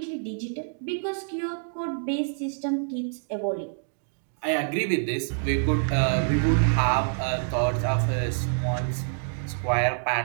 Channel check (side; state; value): left; silent; digital silence